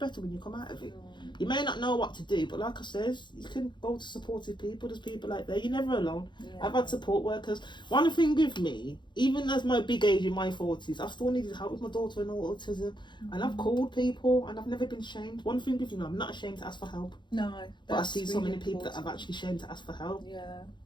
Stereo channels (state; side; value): late; right; 0.22 ms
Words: when you come out of it. You may not know what to do, but like I says, you can go to supportive people. There's people like that. You're never alone. I've had support workers. One thing with me, even as my big age in my 40s, I still needed help with my daughter and autism. And I've called people and I've never been ashamed. One thing with me, I'm not ashamed to ask for help. No. But I see so many people that I've actually ashamed to ask for help. Yeah.